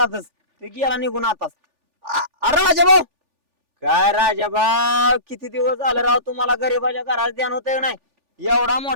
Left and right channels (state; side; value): late; left; 3.4 ms